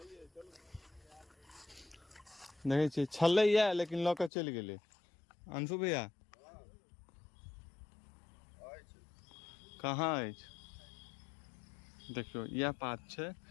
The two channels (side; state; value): right; drops out; at 4.3 s